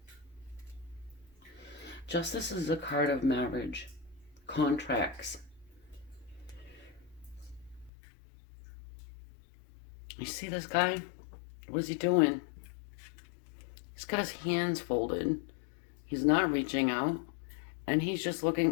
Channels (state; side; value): drops out; right; at 7.9 s